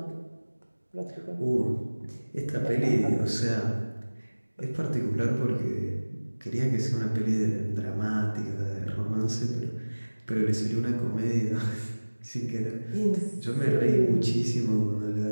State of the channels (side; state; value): both; inverted; correlation -1.00